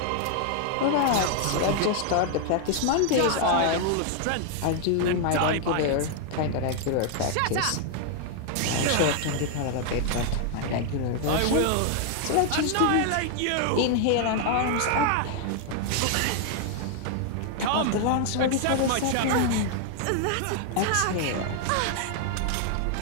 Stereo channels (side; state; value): both; different; correlation 0.00